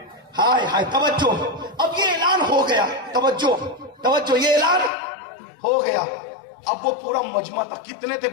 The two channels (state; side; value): drops out; right; at 4.9 s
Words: ہائے ہائے، توجہ، اب یہ اعلان ہو گیا. توجہ، یہ اعلان ہو گیا. اب وہ پورا مجمع تھا. کتنے تھے